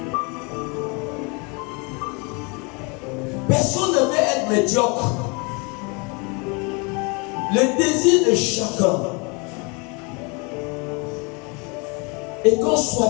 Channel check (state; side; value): quieter; right; 31.1 dB